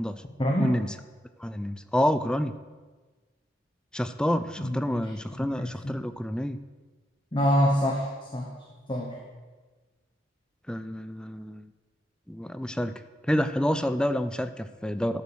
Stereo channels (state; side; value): normal; both; correlation 0.85